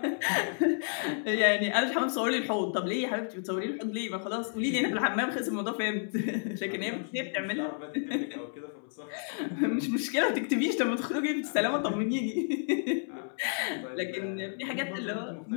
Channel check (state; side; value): silent; right; 57 dB below the other